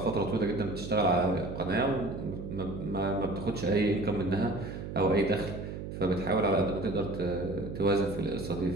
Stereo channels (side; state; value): right; noise; hum, 8 dB below the sound